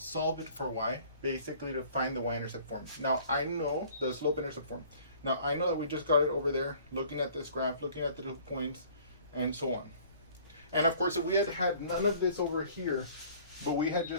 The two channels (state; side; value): inverted; both; correlation -0.53